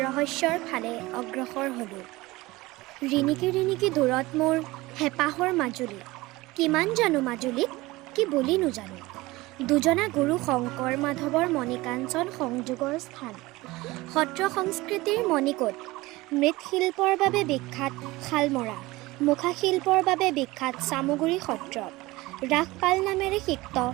ৰহস্যৰ ফালে অগ্ৰসৰ হলো। ৰিণিকি ৰিণিকি দূৰত মোৰ হেঁপাহৰ মাজুলী, কিমান জানো মাজুলীক কি বুলি নোজানো। দুজনা গুৰু শংকৰ মাধৱৰ মণিকাঞ্চন সংযোগৰ স্থান, সত্ৰ সংস্কৃতিৰ মণিকোট। মৃৎশিল্পৰ বাবে বিখ্যাত শালমৰা, মুখাশিল্পৰ বাবে বিখ্যাত চামগুৰি সত্ৰ, ৰাসপাল নামেৰে সিক্ত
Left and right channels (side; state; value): left; quieter; 20.3 dB